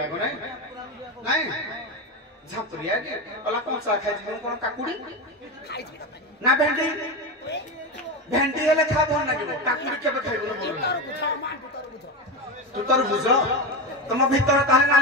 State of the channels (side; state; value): both; normal; correlation 0.18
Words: ଆଗ ନାଇଁ ନାଇଁ ଝାମ୍ପୁରିଆ କି କହିଲା କଞ୍ଚା ଖାଇଛି ମୁଁ କଣ କାକୁଡି ନା ଭେଣ୍ଡି ଭେଣ୍ଡି ହେଲେ ଖା ଭଲ ଲାଗିବ କାକୁଡି କେବେ ଖାଇବୁନି ଭଲ ତୁ ତୋର ବୁଝ ତମ ଭିତରେ ତାହେଲେ